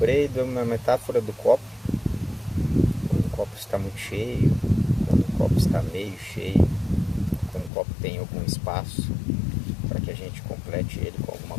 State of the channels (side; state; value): right; drops out; at 7.7 s